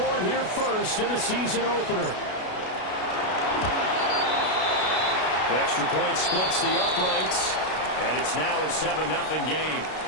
here first in the season opener. Extra point splits the uprights. And it's now a 7-0 game.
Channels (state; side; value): late; right; 32 ms